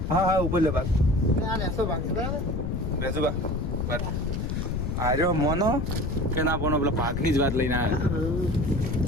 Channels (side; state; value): left; noise; rumble, 2 dB below the sound